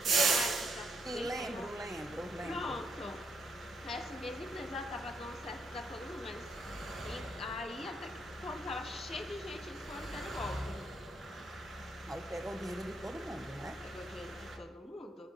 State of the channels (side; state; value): both; normal; correlation 0.76